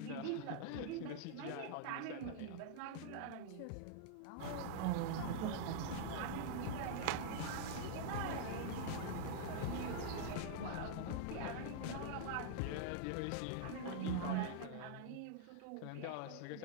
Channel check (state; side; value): different; both; correlation -0.01